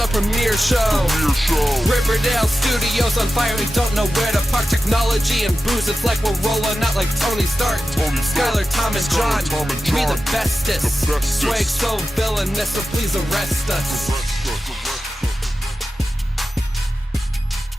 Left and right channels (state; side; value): normal; both; correlation 0.93